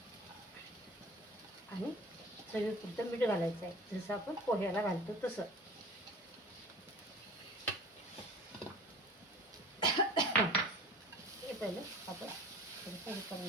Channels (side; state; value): both; normal; correlation 0.41